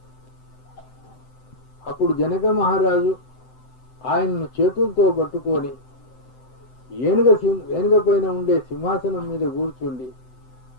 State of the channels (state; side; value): late; right; 7.8 ms